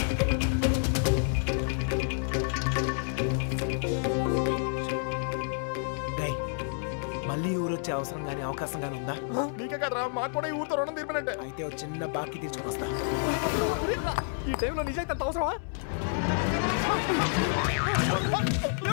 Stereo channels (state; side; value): silent; right; digital silence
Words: మళ్ళీ ఊరు వచ్చే అవసరం గానీ అవకాశం గానీ ఉందా? నీకే కదరా, మాకు కూడా ఈ ఊరితో రుణం తీర్పినట్టే. అయితే ఓ చిన్న బాకీ తీసుకుని వస్తా. ఈ టైంలో నిజాయితీ అంత అవసరమా?